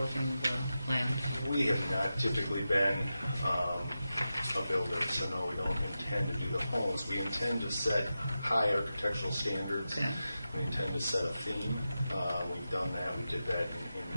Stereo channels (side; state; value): both; inverted; correlation -0.92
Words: the land? We have not typically been a builder, so no, we don't intend to do the homes. We intend to set high architectural standards. Okay. We intend to set a theme. We've done that. We did that in